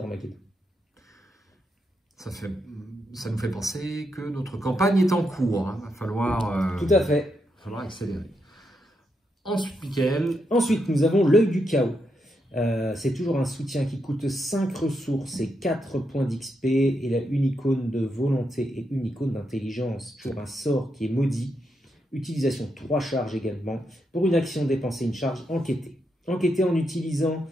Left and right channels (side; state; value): both; normal; correlation 0.82